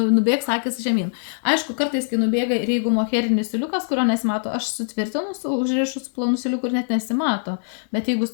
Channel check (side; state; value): right; silent; digital silence